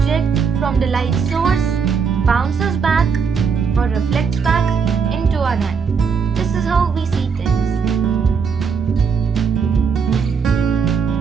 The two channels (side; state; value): left; quieter; 5.9 dB